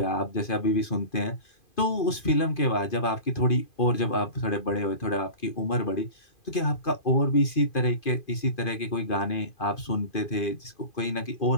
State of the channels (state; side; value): late; right; 2.5 ms